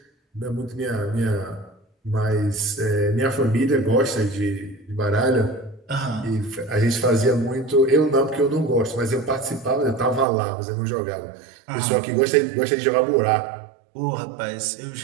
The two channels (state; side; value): drops out; left; at 10.2 s